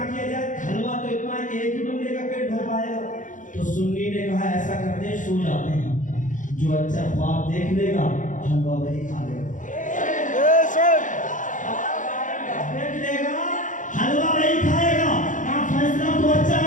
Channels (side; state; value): right; late; 0.37 ms